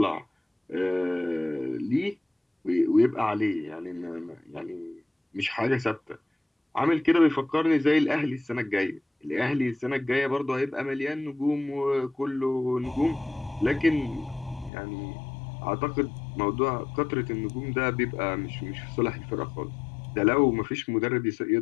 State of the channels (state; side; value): drops out; right; at 14.7 s